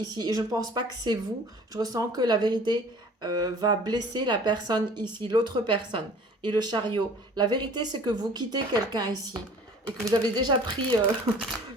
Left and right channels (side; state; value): both; normal; correlation 0.48